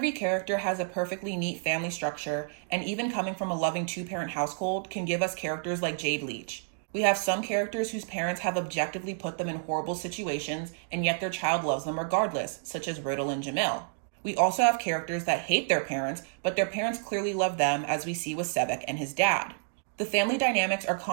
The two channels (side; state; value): left; silent; digital silence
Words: character has a perfectly neat family structure, and even coming from a loving two-parent household can give us characters like Jade Leach. We have some characters whose parents have objectively put them in horrible situations, and yet their child loves them regardless, such as Riddle and Jamil. We also have characters that hate their parents, but their parents clearly love them, as we see with Sebek and his dad. The family dynamics are